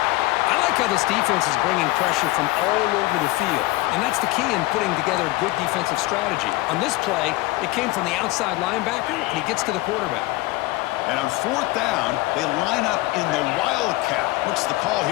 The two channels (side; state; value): right; quieter; 20.1 dB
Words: I like how this defense is bringing pressure from all over the field, and that's the key in putting together a good defensive strategy. On this play, it came from the outside linebacker, and he gets to the quarterback. And on 4th down, they line up in the Wildcat. What's the call